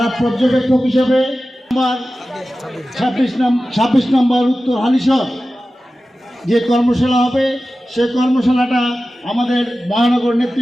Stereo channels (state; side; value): normal; both; correlation 0.95